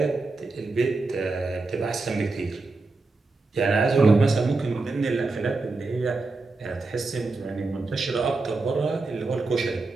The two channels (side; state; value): left; quieter; 3.6 dB